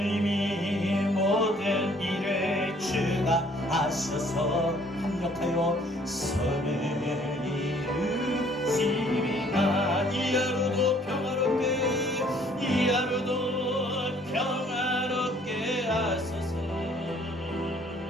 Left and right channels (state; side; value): normal; both; correlation 0.60